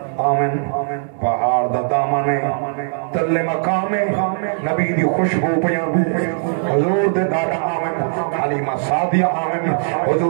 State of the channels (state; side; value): silent; left; 66 dB below the other